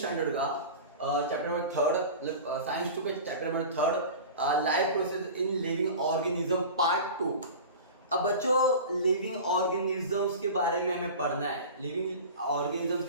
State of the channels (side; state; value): both; inverted; correlation -0.34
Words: का चैप्टर नंबर थर्ड, साइंस 2 के chapter number third, life process in living organism part 2। अब बच्चों, लिविंग ऑर्गेनिजम्स के बारे में हमें पढ़ना है, लिविंग ऑर्गेनिजम्स